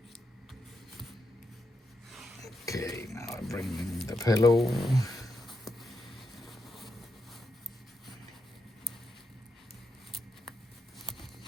Okay, now I bring in the pillow.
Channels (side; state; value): both; normal; correlation 0.83